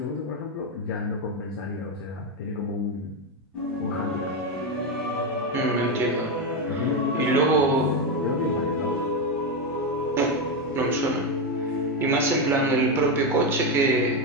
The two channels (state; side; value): normal; both; correlation 0.09